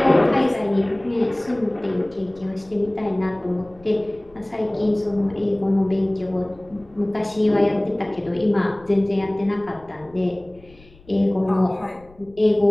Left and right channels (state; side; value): noise; left; rumble, 26 dB below the sound